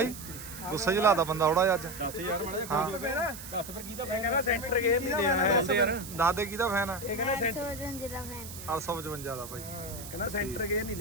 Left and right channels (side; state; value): right; noise; hiss, 12 dB below the sound